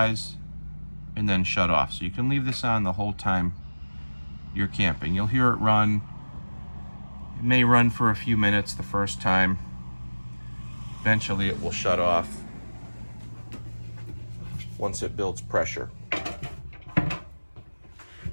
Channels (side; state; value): both; inverted; correlation -1.00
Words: and then shut off. So you can leave this on the whole time you're camping. You'll hear it run. It may run for a few minutes the first time, Eventually it will shut off once it builds pressure.